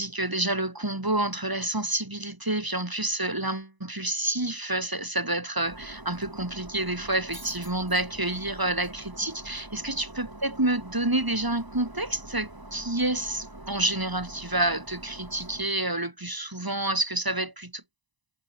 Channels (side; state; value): left; late; 1.0 ms